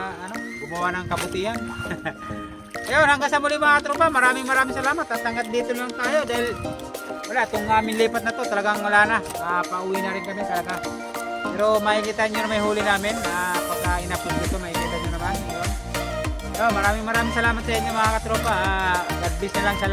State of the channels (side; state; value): both; identical; correlation 1.00